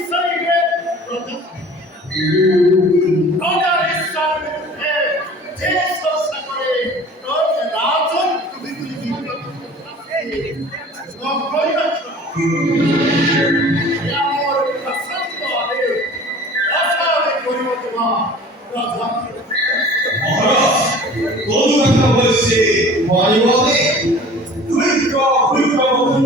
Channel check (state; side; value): normal; both; correlation 0.45